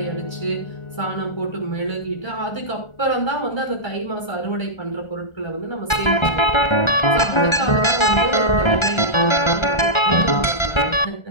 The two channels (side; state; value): right; late; 1.3 ms